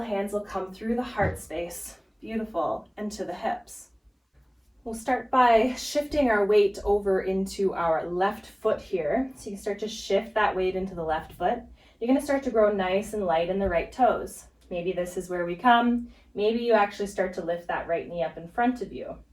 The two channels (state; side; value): identical; both; correlation 1.00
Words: hands will come through the heart space. Beautiful. And to the hips. We'll start by shifting our weight over into our left foot here. So you can start to shift that weight into the left foot. You're going to start to grow nice and light in the right toes. Maybe this is where we come. Maybe you actually start to lift that right knee up in front of you.